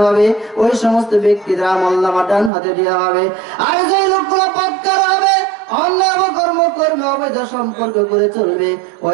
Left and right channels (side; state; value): left; drops out; at 2.5 s